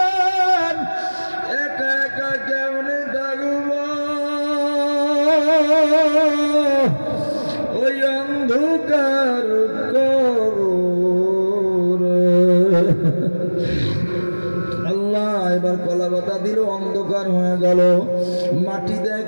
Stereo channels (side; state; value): both; inverted; correlation -1.00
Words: একা একা কেমনে থাকব ওই অন্ধকার কবরে। আল্লাহ এবার কলা পাতা দিল, অন্ধকার হয়ে গেল। মাটি দেয়,